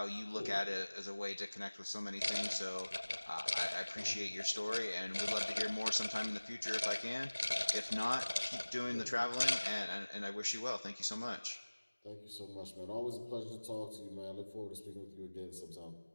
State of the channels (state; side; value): inverted; both; correlation -1.00